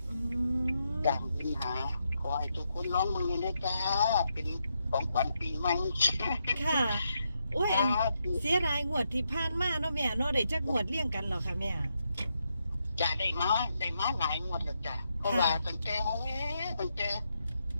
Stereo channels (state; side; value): inverted; both; correlation -0.82